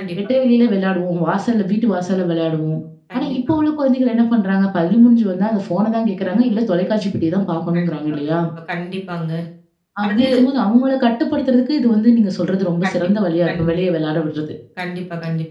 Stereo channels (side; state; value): both; identical; correlation 1.00